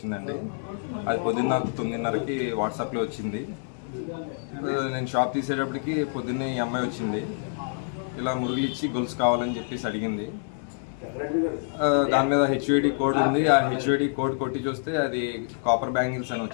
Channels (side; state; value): right; silent; digital silence